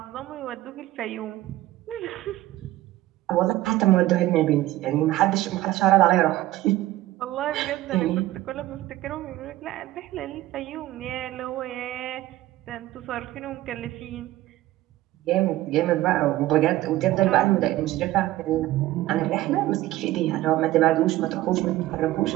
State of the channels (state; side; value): quieter; left; 15.9 dB